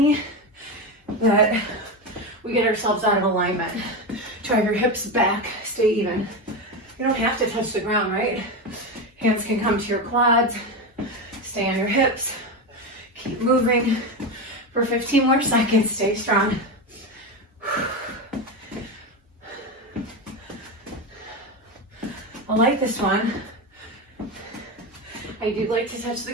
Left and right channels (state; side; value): normal; both; correlation 0.17